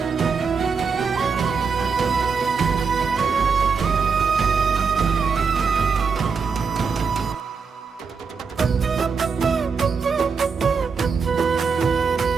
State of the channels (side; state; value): left; quieter; 5.4 dB